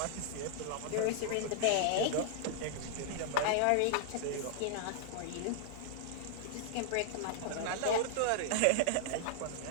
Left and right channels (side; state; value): both; different; correlation -0.01